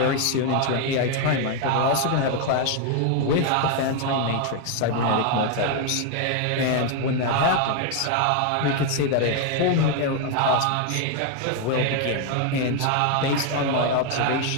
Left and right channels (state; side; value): different; both; correlation 0.01